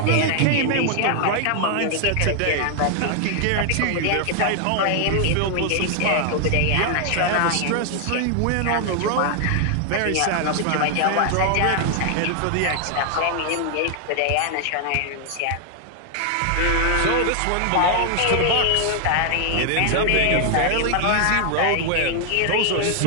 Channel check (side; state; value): both; different; correlation 0.00